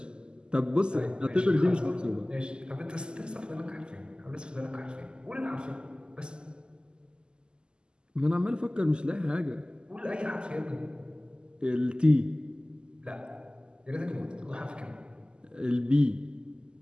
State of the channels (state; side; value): late; left; 0.048 ms